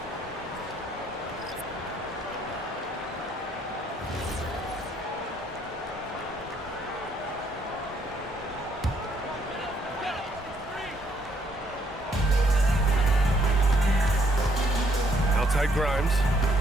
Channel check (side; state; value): both; normal; correlation 0.69